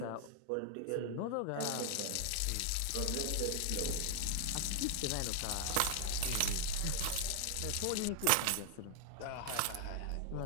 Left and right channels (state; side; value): different; both; correlation 0.00